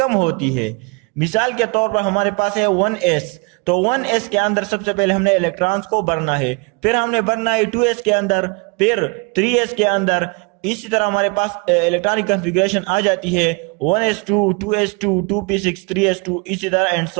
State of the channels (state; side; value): quieter; left; 30.7 dB